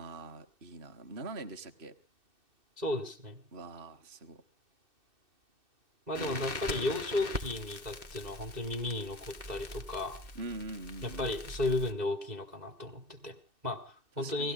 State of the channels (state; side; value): late; left; 2.6 ms